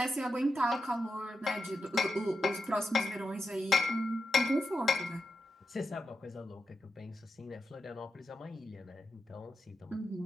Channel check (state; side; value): normal; both; correlation 0.88